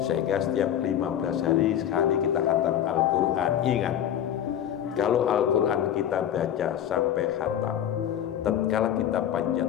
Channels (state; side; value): quieter; right; 10.4 dB